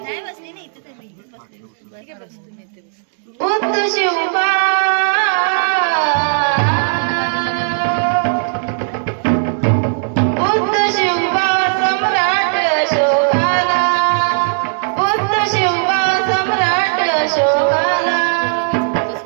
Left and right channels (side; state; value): left; silent; digital silence